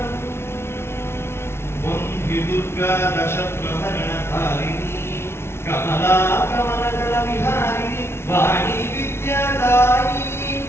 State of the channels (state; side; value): late; right; 0.12 ms